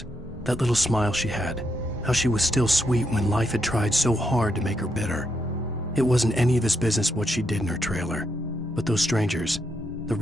That little smile she had. How she was still sweet when life had tried so hard to make her bitter. It wasn't any of his business what she did in her trailer. But those strangers, the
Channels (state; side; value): normal; both; correlation 0.80